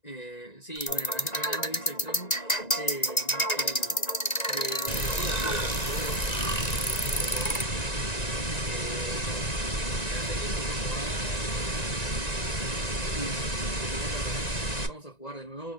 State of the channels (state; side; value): late; right; 1.9 ms